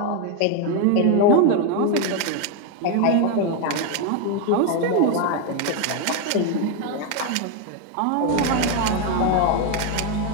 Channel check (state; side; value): different; both; correlation 0.01